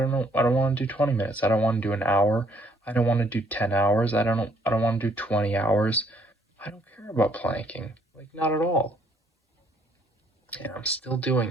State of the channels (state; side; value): normal; both; correlation 0.66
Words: want to do 20 minutes. I don't want to do an hour. I don't want to do 10 hours. I don't want to do 20 hours. I don't care about planking. Like, not at all. And I'm still doing